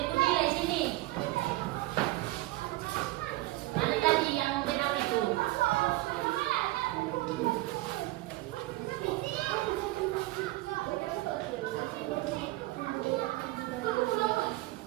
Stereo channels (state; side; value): quieter; left; 19.2 dB